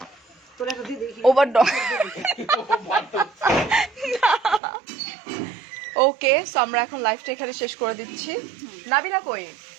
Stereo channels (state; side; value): drops out; left; at 4.6 s